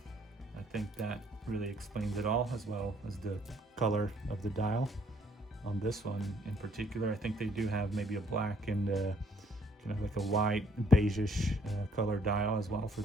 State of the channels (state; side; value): normal; both; correlation 0.64